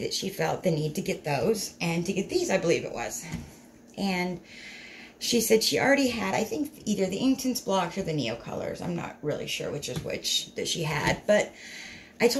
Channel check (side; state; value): both; identical; correlation 1.00